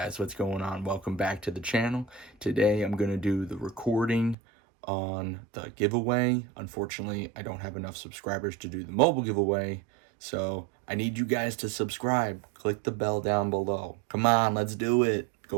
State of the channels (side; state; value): left; drops out; at 4.4 s